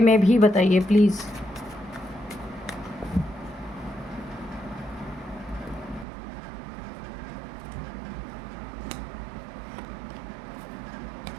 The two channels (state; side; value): drops out; left; at 6.1 s